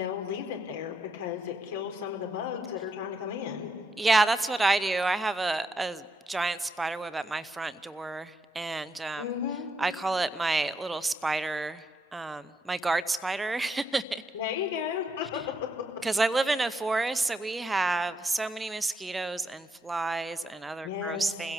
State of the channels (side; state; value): both; normal; correlation 0.79